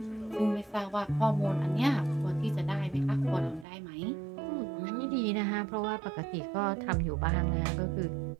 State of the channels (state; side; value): drops out; left; at 3.7 s